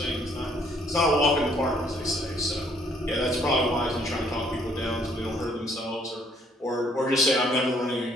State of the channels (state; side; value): normal; both; correlation 0.64